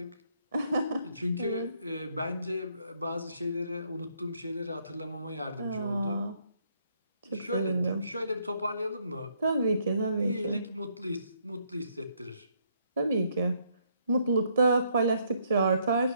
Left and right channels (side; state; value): both; inverted; correlation -0.71